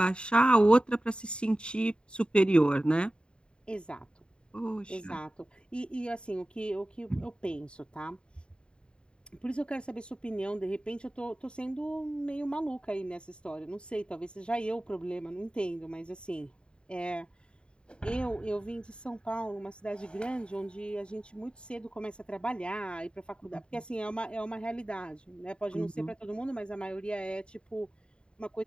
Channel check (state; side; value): late; right; 0.052 ms